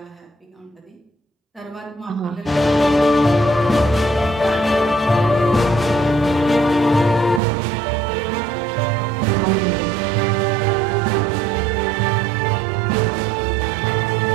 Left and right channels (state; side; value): drops out; left; at 7.4 s